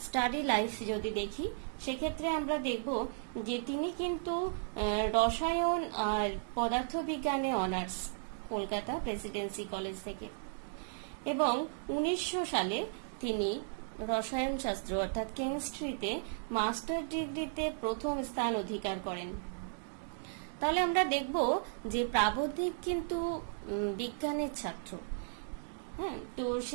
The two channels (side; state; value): left; silent; digital silence